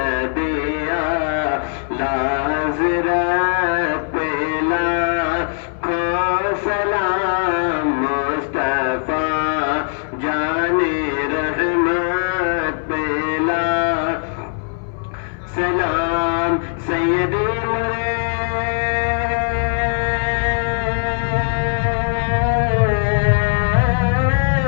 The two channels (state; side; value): silent; right; 61 dB below the other